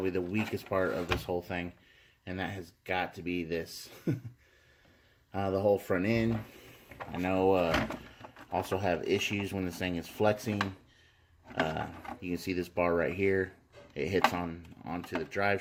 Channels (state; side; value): identical; both; correlation 1.00